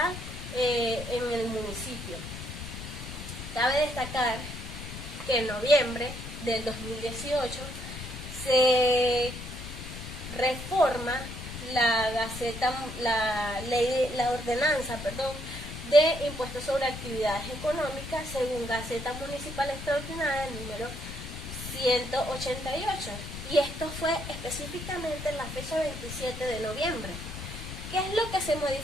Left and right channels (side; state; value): left; noise; rumble, 9 dB below the sound